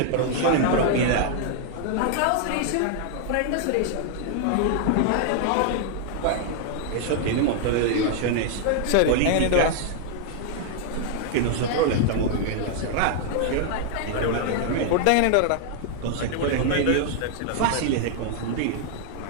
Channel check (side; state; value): both; different; correlation 0.00